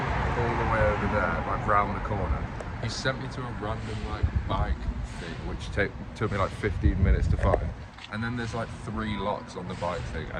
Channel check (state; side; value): identical; both; correlation 1.00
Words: all the way over there, like round the corner. He sent me to a random like bike thing, which took me like 15 minutes to find. And then there's like 3 locks on the bike thing,